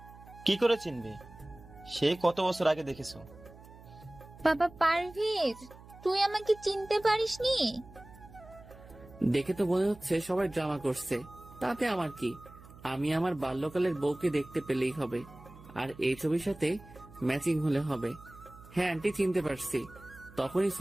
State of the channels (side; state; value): right; noise; hum, 20 dB below the sound